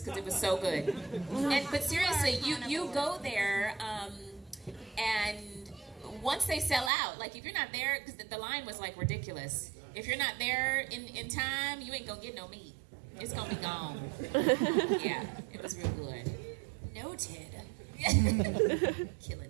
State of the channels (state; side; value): drops out; left; at 6.9 s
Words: because it was so good. But seriously, you go there and once they sell out, like if you're not there, because the line was like ridiculous. If you're not there in time, you ain't gonna get no meat. It's gonna be gone. Yeah, it was real good. Noted.